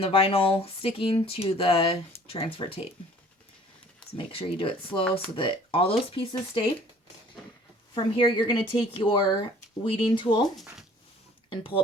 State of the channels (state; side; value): normal; both; correlation 0.53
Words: vinyl sticking to the transfer tape. So make sure you do it slow so that all those pieces stay. From here, you're going to take your weeding tool and pull